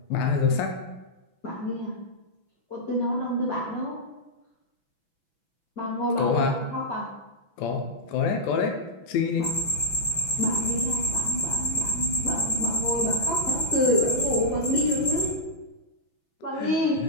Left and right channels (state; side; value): late; right; 6.1 ms